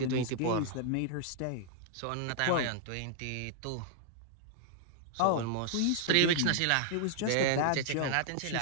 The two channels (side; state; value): both; different; correlation -0.01